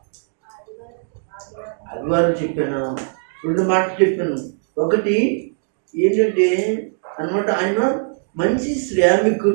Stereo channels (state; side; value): silent; left; digital silence